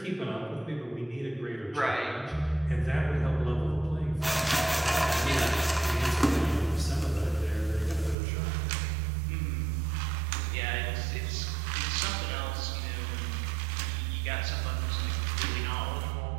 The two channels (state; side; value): drops out; left; at 8.2 s